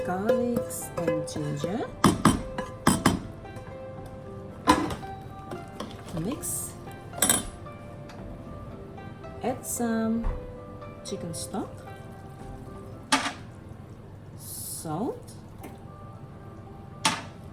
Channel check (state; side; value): identical; both; correlation 1.00